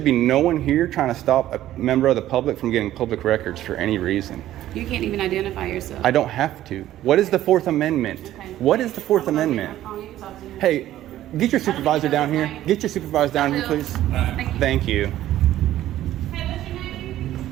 be no one here trying to stop a member of the public from getting public records for any reason. You can't even identify yourself. I don't have to. What is the Fourth Amendment? Okay. What is the Fourth Amendment? You can talk to him. Hey, get your supervisor down here. Get your supervisor down here, please. Thank you. Hey, what's your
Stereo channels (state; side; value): quieter; left; 13.5 dB